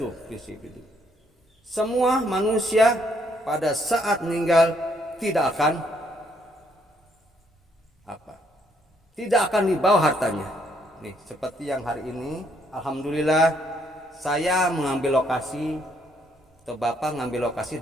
prinsip itu. Semua manusia pada saat meninggal tidak akan dibawa hartanya. Nih, seperti yang hari ini, alhamdulillah saya mengambil lokasi, atau Bapak ngambil lokasi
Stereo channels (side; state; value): both; normal; correlation 0.70